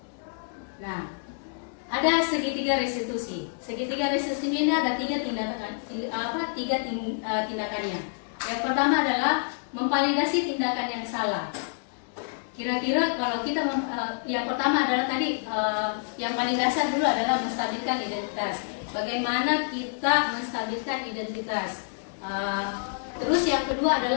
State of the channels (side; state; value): right; silent; digital silence